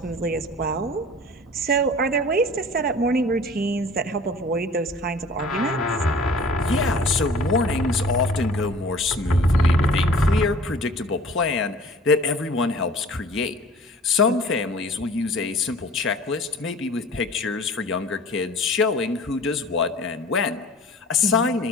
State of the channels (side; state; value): both; normal; correlation 0.46